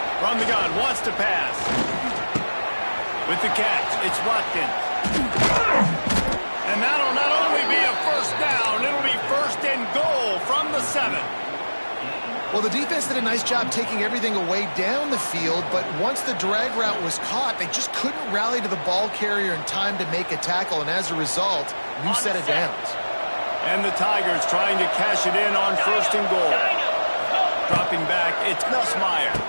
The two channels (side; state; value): both; inverted; correlation -1.00